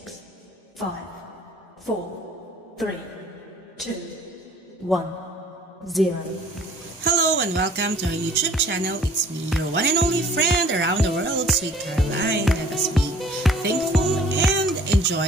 5, 4, 3, 2, 1, 0. Hello and welcome to our YouTube channel. It's me, your one and only friend around the world, Sweet Caroline. Let us be thankful and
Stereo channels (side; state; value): both; normal; correlation 0.53